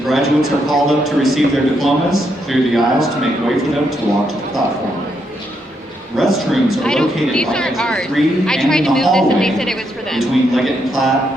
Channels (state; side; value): normal; both; correlation 0.78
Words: graduates are called up to receive their diplomas, clear the aisles to make way for them to walk to the platform. Restrooms are located these on aren't exit ours. 3 I and tried in to the move hallway this and they said it was for them. between Leggett and